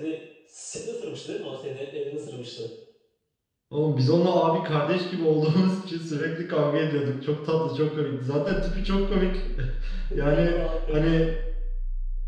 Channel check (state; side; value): identical; both; correlation 1.00